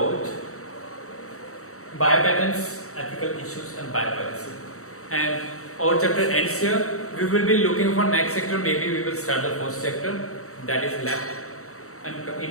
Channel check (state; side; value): late; right; 0.64 ms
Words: biopatents, ethical issues, and biopiracy. And our chapter ends here. We will be looking for next chapter. Maybe we will start the first chapter that is left and